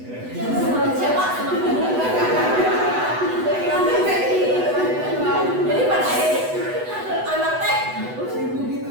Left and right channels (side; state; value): left; late; 8.0 ms